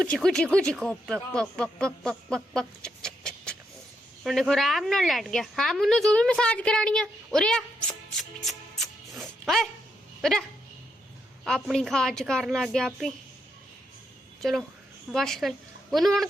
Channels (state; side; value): normal; both; correlation 0.80